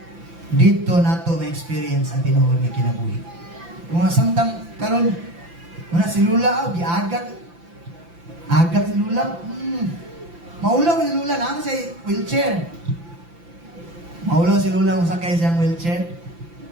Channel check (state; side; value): late; left; 5.9 ms